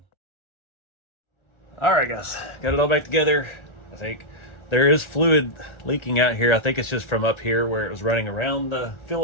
All right, guys, got it all back together. I think there is fluid leaking out here. I think it's just from up here where it was running around the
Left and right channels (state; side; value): late; right; 1.4 ms